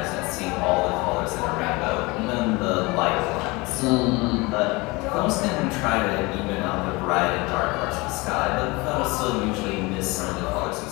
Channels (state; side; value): quieter; right; 24.6 dB